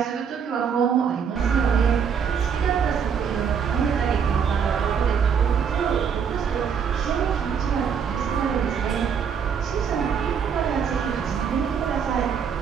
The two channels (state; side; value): quieter; left; 7.1 dB